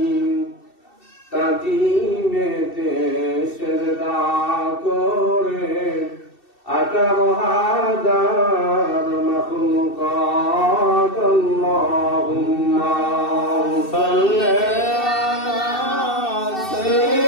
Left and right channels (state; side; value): late; right; 2.7 ms